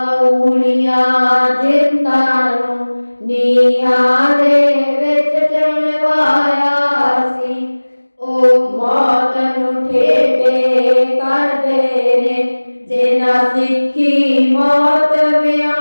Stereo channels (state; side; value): inverted; both; correlation -1.00